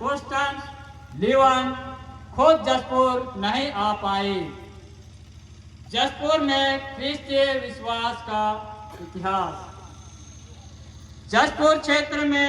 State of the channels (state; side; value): identical; both; correlation 1.00